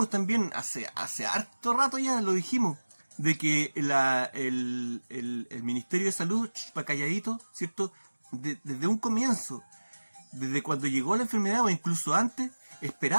también hace harto rato ya, lo dijimos, de que el Ministerio de Salud, pa' calladito, ¿cierto? Desde un comienzo, desde cuando llegó la enfermedad o incluso antes,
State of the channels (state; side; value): inverted; both; correlation -1.00